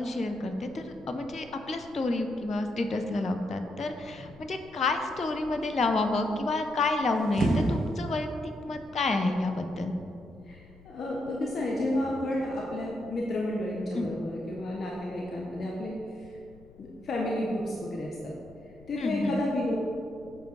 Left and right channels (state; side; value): noise; left; rumble, 23 dB below the sound